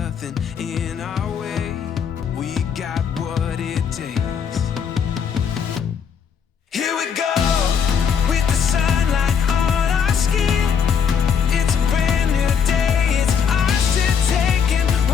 in our way. We got what it takes. Here we go with the sunlight on our skin. It's a brand new day, it's ours to take, and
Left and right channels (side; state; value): right; quieter; 7.1 dB